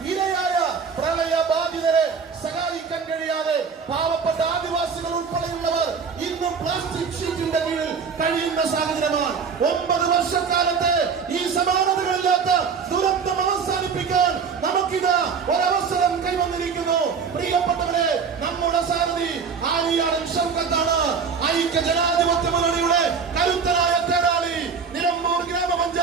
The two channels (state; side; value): quieter; left; 5.8 dB